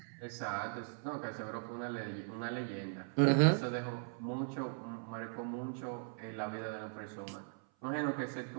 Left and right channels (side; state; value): left; silent; 52 dB below the other